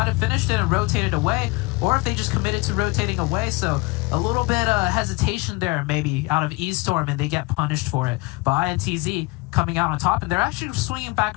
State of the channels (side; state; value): right; quieter; 25.0 dB